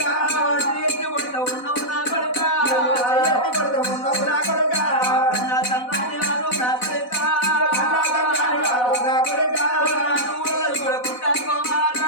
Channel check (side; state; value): right; late; 4.0 ms